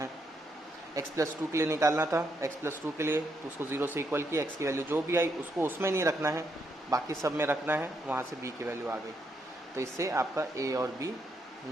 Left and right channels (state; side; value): normal; both; correlation 0.78